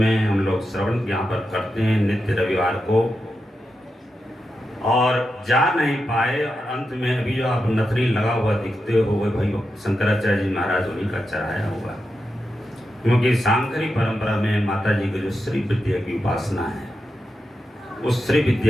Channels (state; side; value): normal; both; correlation 0.88